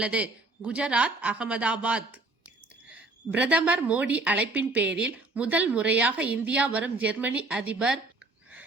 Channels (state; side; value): quieter; left; 3.1 dB